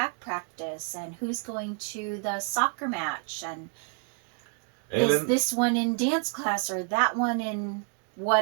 practice, and who's going to the soccer match, and is this one in dance class or that one in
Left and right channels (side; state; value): left; quieter; 38.4 dB